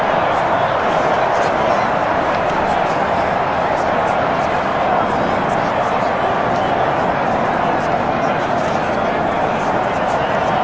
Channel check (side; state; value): both; identical; correlation 1.00